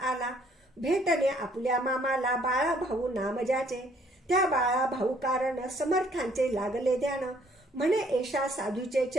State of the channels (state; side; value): normal; both; correlation 0.63